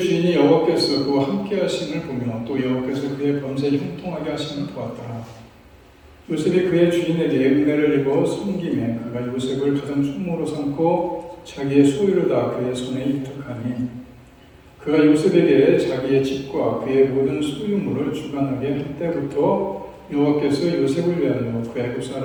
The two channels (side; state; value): both; identical; correlation 1.00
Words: 여호와께서 그와 함께 하심을 보며 또 여호와께서 그의 범죄 형통하게 하심을 보았더라. 요셉이 그의 주인에게 은혜를 입어 섬김에 그가 요셉을 가장 총무로 삼고 자기의 소유를 다 그의 손에 이탁하니 그가 요셉에게 자기의 집과 그의 모든 소유물을 주관하게 할 때부터 여호와께서 요셉을 위하여 그 애굽